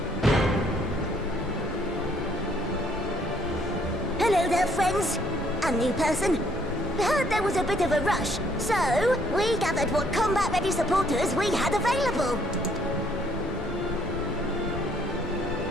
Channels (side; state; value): both; normal; correlation 0.66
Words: Hello there, friends. A new person. Heard there was a bit of a rush, so we gathered what combat-ready supporters we had available.